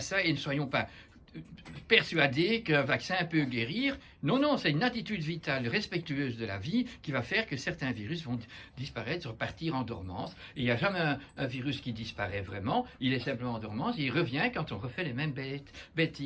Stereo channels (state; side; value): identical; both; correlation 1.00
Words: et ne soyons pas persuadés qu'un vaccin peut guérir. Non, c'est une attitude vitale respectueuse de la vie qui va faire que certains virus vont disparaître, repartir en dormance. Et il n'y a jamais un virus qui disparaît vraiment, il est simplement en dormance, et il revient quand on refait les mêmes